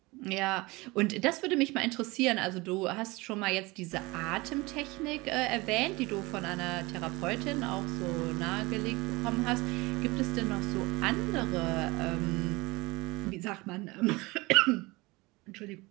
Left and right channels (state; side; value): quieter; left; 23.0 dB